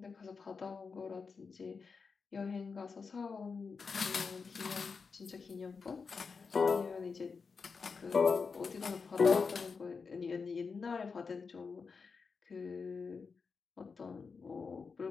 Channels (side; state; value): right; quieter; 5.1 dB